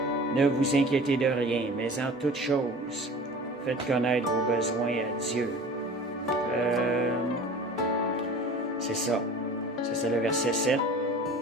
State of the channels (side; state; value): both; normal; correlation 0.41